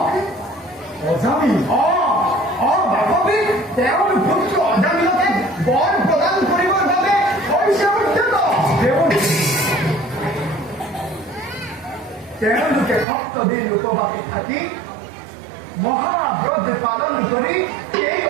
অজামিল? বান্ধৱী, তেওঁৰ পুত্ৰ অজামিলকে বৰ প্ৰদান কৰিবৰ বাবে হৈছে উদ্যত। তেওঁলোকে সপ্তদিন উপবাসী থাকি মহাব্ৰত পালন কৰি এই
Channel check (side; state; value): left; drops out; at 13.1 s